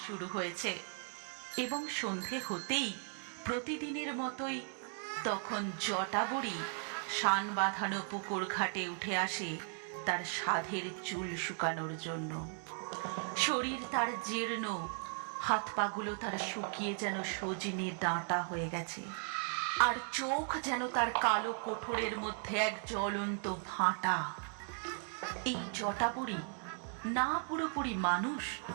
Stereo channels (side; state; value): left; silent; 53 dB below the other